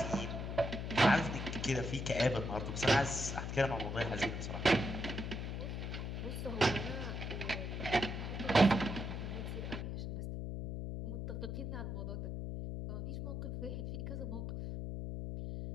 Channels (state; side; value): noise; left; hum, 4 dB below the sound